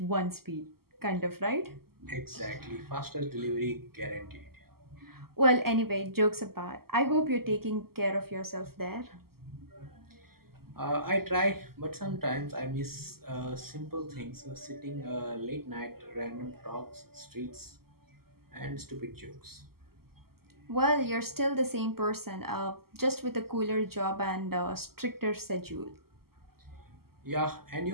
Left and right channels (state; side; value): late; left; 0.95 ms